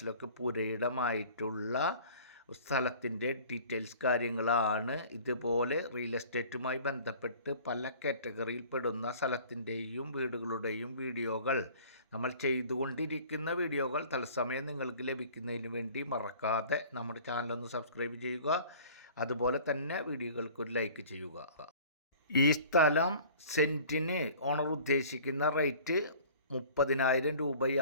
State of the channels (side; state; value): both; inverted; correlation -0.47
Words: പുരയിടമായിട്ടുള്ള സ്ഥലത്തിൻ്റെ ഡീറ്റെയിൽസ് കാര്യങ്ങളാണ്. ഇതുപോലെ റിയൽ എസ്റ്റേറ്റുമായി ബന്ധപ്പെട്ട് പല കാറ്റഗറിയിൽ പെടുന്ന സ്ഥലത്തിൻ്റെയും വീടുകളുടെയും വീഡിയോകൾ നമ്മൾ ചെയ്തുകൊണ്ടിരിക്കുന്ന വീഡിയോകൾ തത്സമയം നിങ്ങൾക്ക് ലഭിക്കുന്നതിന് വേണ്ടി മറക്കാതെ നമ്മുടെ ചാനലൊന്ന് സബ്സ്ക്രൈബ് ചെയ്യുക. അതുപോലെ തന്നെ വീഡിയോകൾക്കൊരു ലൈക്ക് ചെയ്യുക. ഈ സ്ഥലം സെൻറ്റിന് ഓണർ ഉദ്ദേശിക്കുന്ന റേറ്റ് 30,000